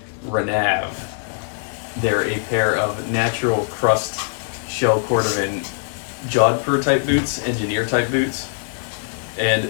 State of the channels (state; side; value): silent; right; 61 dB below the other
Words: Renav. They're a pair of natural crust shell cordovan jodhpur type boots, engineer type boots. And